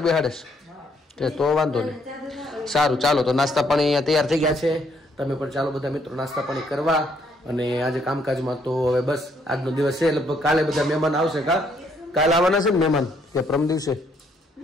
બેહાડે છે, તો વાંધો નહીં. સારું ચાલો, તો નાસ્તા પાણી અહીંયા તૈયાર થઈ ગયા છે. તમે પણ ચાલો બધા મિત્રો નાસ્તા પાણી કરવા. અને આજે કામકાજમાં તો હવે બસ આજનો દિવસ છે. લગભગ કાલે બધા મહેમાન આવશે. કાલે આવવાના છે ને મહેમાન કે પરમ દિવસે?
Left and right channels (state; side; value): normal; both; correlation 0.70